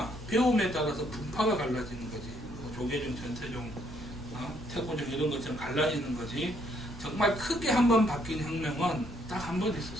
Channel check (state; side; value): noise; right; rumble, 17 dB below the sound